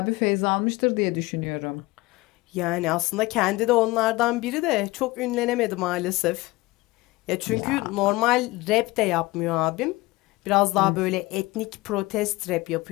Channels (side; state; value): right; quieter; 21.0 dB